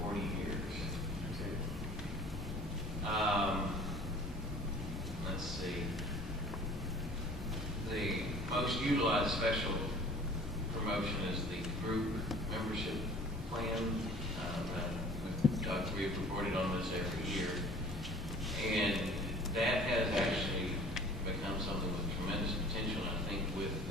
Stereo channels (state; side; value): normal; both; correlation 0.48